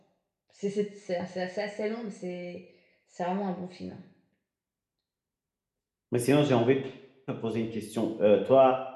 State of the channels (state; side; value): identical; both; correlation 1.00